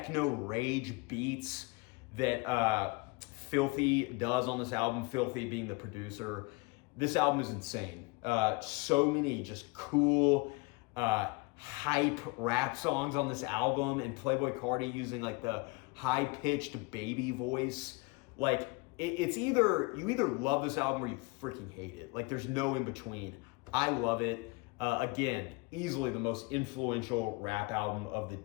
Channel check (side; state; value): right; quieter; 26.5 dB